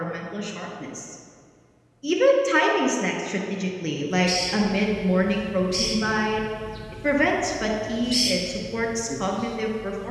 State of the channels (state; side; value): identical; both; correlation 1.00